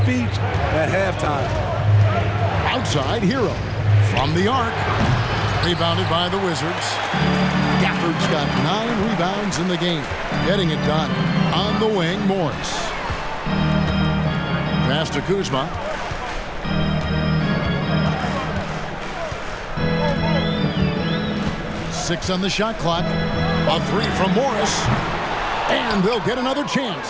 at halftime. Outside, Hero. From the arc. Rebounded by the Wizards. Gafford's got 9 rebounds in the game. Getting it done. On the wing, Morris. Pass to Kuzma. Six on the shot clock. A three from Morris. And they'll get another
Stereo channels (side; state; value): both; identical; correlation 1.00